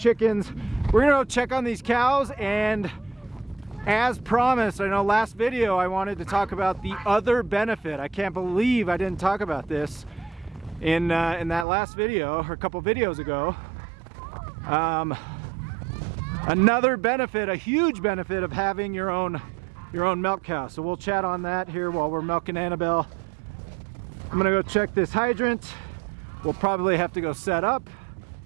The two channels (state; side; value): drops out; left; at 11.7 s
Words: We're gonna go check on these cows, and as promised, I know last video I wanted to talk about the other benefit. I can't believe I didn't talk about this in that last video, or a couple videos ago. Another benefit, a huge benefit of having your own milk cow. So we'll chat on that here while we're milking Annabelle. I'm gonna go check this hydrant. We'll probably have to go set up,